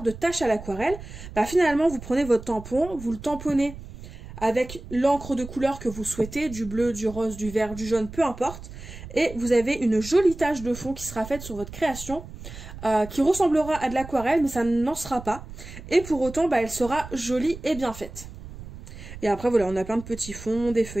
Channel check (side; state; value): right; noise; rumble, 14 dB below the sound